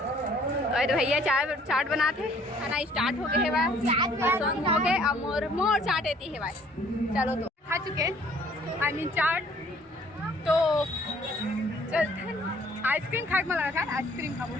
भैया चाट बनाते, खाना स्टार्ट हो गए है भाई, हो गए अब मोर चाट आती है भाई। चलो तो खा चुके आई मीन चाट, तो चलते हैं आइसक्रीम खाए में लगा था, आइसक्रीम खाओ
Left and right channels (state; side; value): normal; both; correlation 0.59